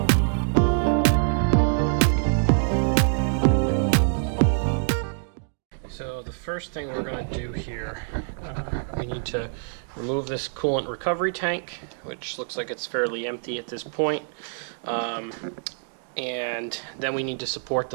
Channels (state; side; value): silent; left; digital silence